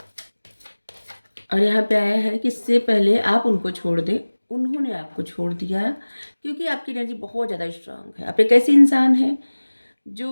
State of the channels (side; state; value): both; inverted; correlation -1.00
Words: और यहाँ पे आया है कि इससे पहले आप उनको छोड़ दें, उन्होंने आपको छोड़ दिया, क्योंकि आपकी एनर्जी बहुत ज़्यादा स्ट्रांग है। आप एक ऐसे इंसान हैं